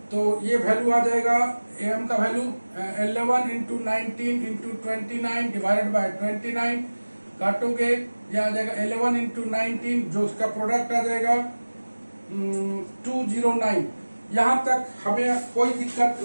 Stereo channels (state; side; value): inverted; both; correlation -1.00